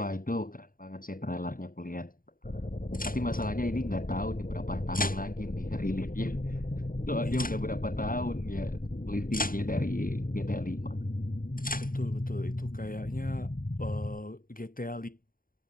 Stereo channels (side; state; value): right; late; 0.41 ms